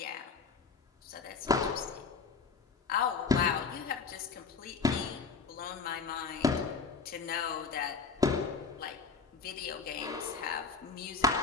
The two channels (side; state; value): right; quieter; 5.1 dB